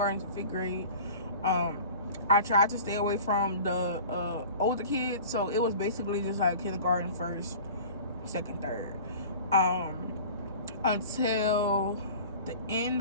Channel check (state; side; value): inverted; both; correlation -0.41